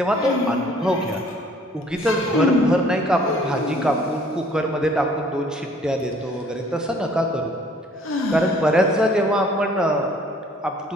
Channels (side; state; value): both; normal; correlation 0.57